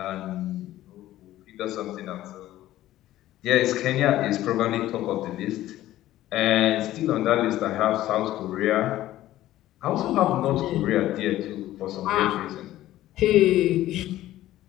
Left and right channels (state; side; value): quieter; right; 14.5 dB